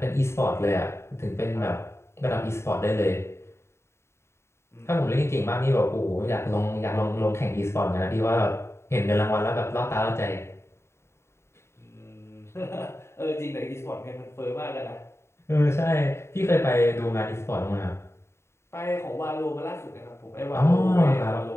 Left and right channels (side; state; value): right; late; 0.13 ms